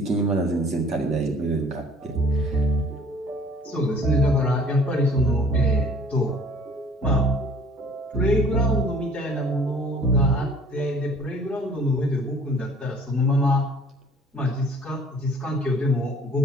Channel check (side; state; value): both; normal; correlation 0.52